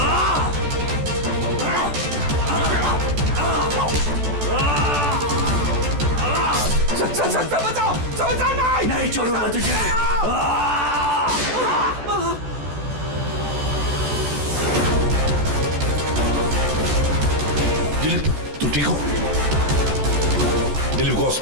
सर बचाओ नहीं छोड़ूंगा तुझे। दिलीप तू ठीक हो? दिलीप को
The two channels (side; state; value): left; late; 14 ms